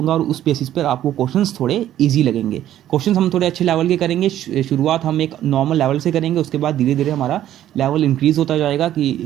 और उस बेसिस पर आपको क्वेश्चंस थोड़े इजी लगेंगे। क्वेश्चंस हम थोड़े अच्छे लेवल के करेंगे। शुरुआत हम एक नॉर्मल लेवल से करेंगे, उसके बाद धीरे धीरे हमारा लेवल इंक्रीज होता जाएगा।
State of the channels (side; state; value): left; quieter; 12.1 dB